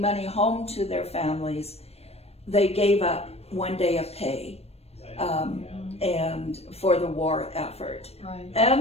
money home to their families, they gave up 1 day of pay and for the war effort.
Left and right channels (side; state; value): right; late; 0.30 ms